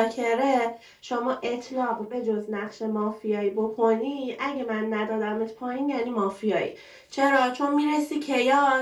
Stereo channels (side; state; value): both; identical; correlation 1.00